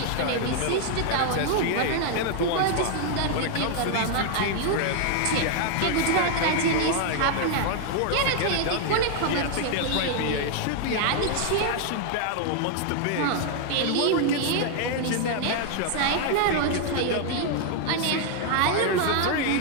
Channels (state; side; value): different; both; correlation 0.00